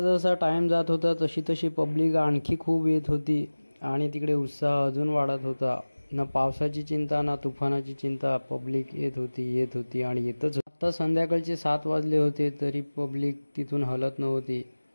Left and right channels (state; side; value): inverted; both; correlation -1.00